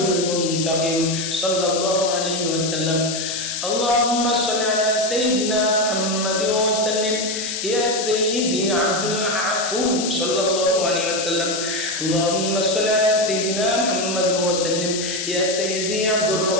المنتقم صلى الله عليه وسلم اللهم صل على سيدنا محمد وسلم يا سيدي عبد العفو صلى الله عليه وسلم اللهم صل على سيدنا محمد وسلم يا سيدي عبد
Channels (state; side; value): noise; left; hiss, 4 dB below the sound